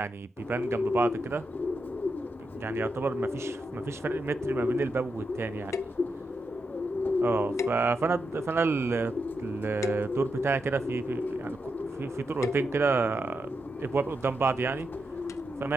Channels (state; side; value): normal; both; correlation 0.85